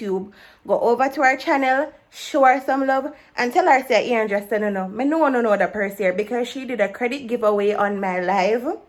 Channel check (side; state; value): both; identical; correlation 1.00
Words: Go over to our channel, show her some love, and tell her say you're interested in know. I know the person here because she did a credit giveaway on my live a